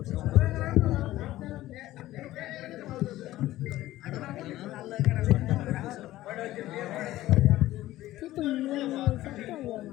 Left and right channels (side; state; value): right; quieter; 15.6 dB